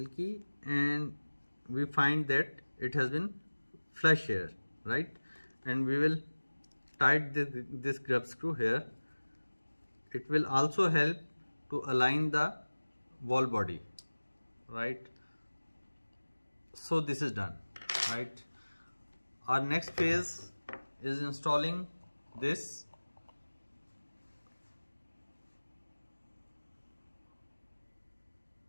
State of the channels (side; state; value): both; inverted; correlation -1.00